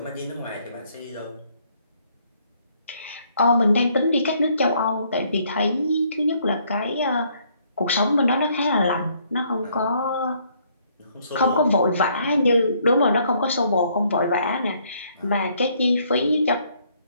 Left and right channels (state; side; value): inverted; both; correlation -0.67